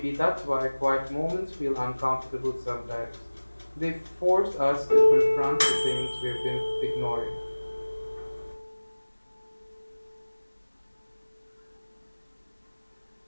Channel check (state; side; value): inverted; both; correlation -1.00